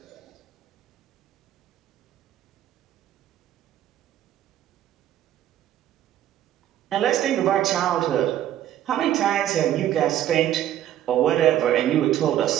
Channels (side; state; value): left; quieter; 12.0 dB